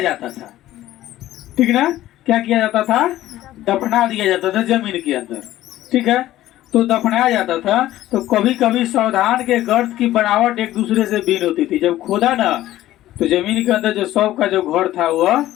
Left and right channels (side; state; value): right; quieter; 14.5 dB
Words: जाता था, ठीक ना। क्या किया जाता था? दफना दिया जाता था जमीन के अंदर, ठीक है। तो दफनाया जाता था। तो कभी कभी सावधान के गर्त की बनावट एक दूसरे से भिन्न होती थी। जब खोदा ना, तो जमीन के अंदर जो शव का जो घर था वह